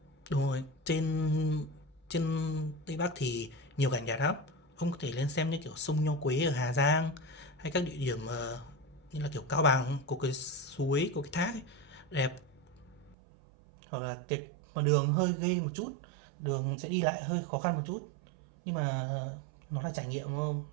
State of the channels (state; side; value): drops out; left; at 13.2 s